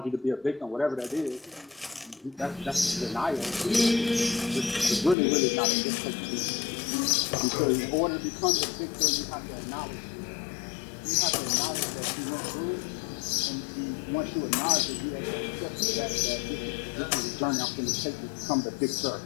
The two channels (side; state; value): right; drops out; at 5.2 s